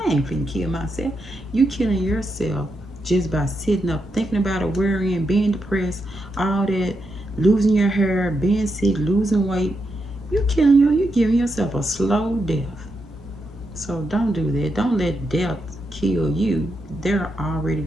ain't finna kill myself. You killing yourself just by sitting up, thinking about it, worrying, being depressed, all that, losing your hair, being sick, losing weight. You're giving yourself a slow death. So don't do that. Don't let death kill you. They're already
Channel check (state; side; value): normal; both; correlation 0.84